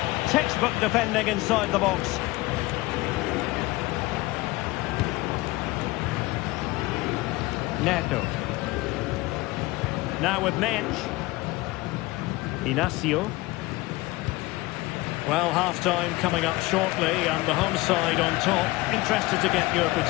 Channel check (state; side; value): quieter; right; 20.6 dB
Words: Textbook defending inside the box. Neto. Now with Mensch. Inacio. Well, half-time coming up shortly, and the home side on top. Interested to get your